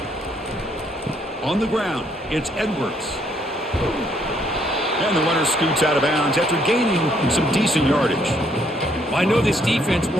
On the ground, it's Edwards. And the runner scoots out of bounds after gaining some decent yardage. I know this defense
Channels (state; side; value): normal; both; correlation 0.69